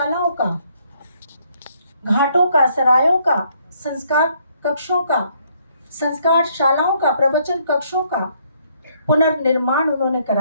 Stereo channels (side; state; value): both; inverted; correlation -0.68